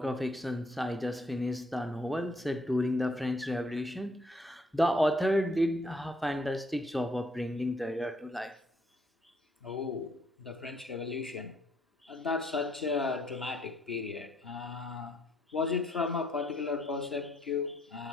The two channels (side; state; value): both; normal; correlation 0.69